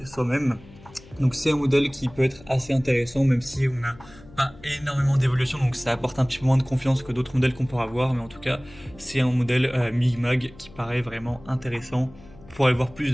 soi-même. Donc c'est un modèle qui peut être assez intéressant, même si on n'a pas énormément d'évolution, donc ça apporte un petit peu moins de confiance que d'autres modèles qu'on pourra avoir, mais en tout cas c'est un modèle MIG-MAG qui paraît vraiment intéressant. Pour aller voir plus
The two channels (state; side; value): noise; left; hum, 22 dB below the sound